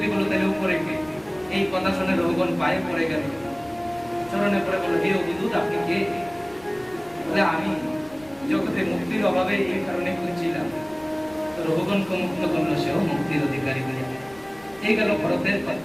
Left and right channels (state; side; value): noise; left; rumble, 25 dB below the sound